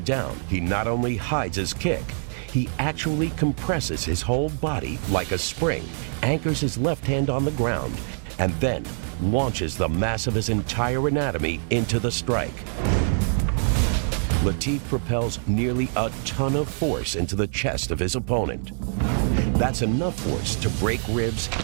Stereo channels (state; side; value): silent; left; 62 dB below the other